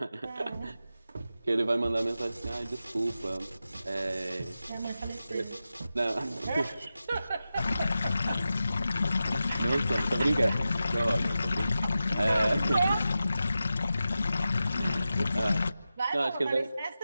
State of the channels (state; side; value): inverted; both; correlation -0.92